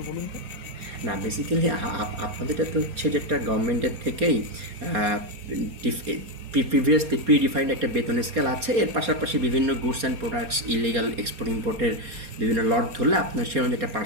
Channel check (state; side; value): late; left; 4.3 ms